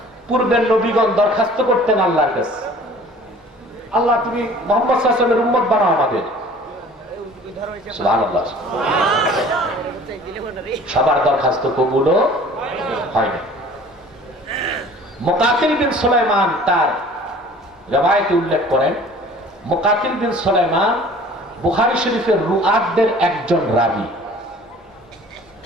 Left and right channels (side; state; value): both; normal; correlation 0.48